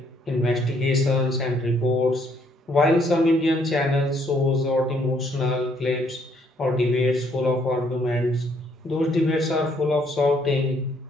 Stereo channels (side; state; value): both; normal; correlation 0.68